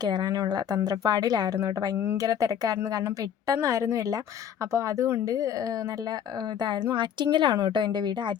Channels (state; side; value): quieter; right; 9.1 dB